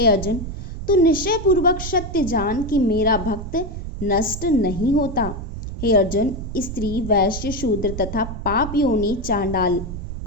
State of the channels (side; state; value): right; noise; rumble, 7 dB below the sound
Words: अर्जुन, तू निश्चय पूर्वक सत्य जान कि मेरा भक्त नष्ट नहीं होता। हे अर्जुन, स्त्री वैश्य शूद्र तथा पाप योनि चांडाल